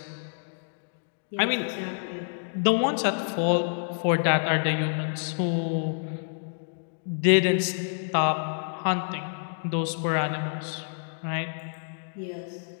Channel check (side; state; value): right; silent; digital silence